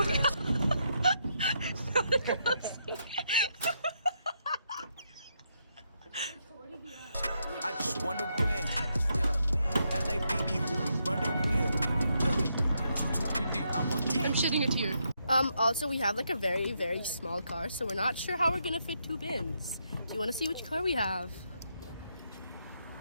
god. I just wanna win. Yeah. LABB who we running with. Yeah. 2, 2, 3, 3, I'm on 10. I'm shedding a tear. Also we have like a very, very small car, so we're not sure how we're gonna fit 2 bins. Do you wanna see which car we have?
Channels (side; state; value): both; inverted; correlation -0.78